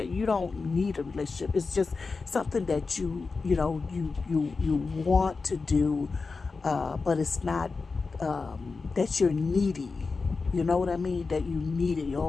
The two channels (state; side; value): quieter; right; 4.3 dB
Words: you don't need a relationship. It's just something that you want to do, but it's not that you're needy. You know what I mean? That you need it.